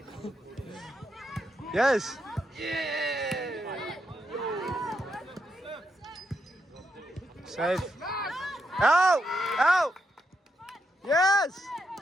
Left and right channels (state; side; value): normal; both; correlation 0.82